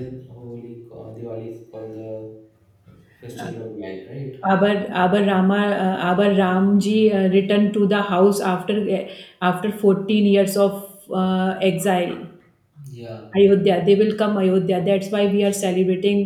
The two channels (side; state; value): both; identical; correlation 1.00